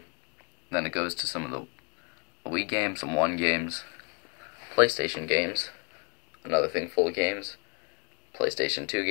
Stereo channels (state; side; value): quieter; right; 32.6 dB